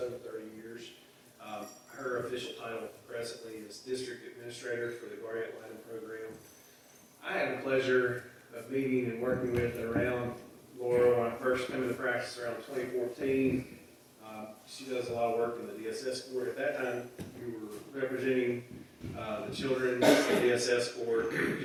30 years. Her official title presently is District Administrator for the Guardian Litem program. I had the pleasure of meeting and working with and around Laura when I first came into practice around 2014. She does a lot of work in the DSS court. At that time, you were representing the children in the DSS court, the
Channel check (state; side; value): identical; both; correlation 1.00